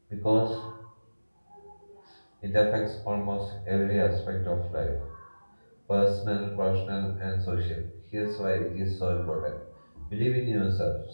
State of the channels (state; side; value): inverted; both; correlation -1.00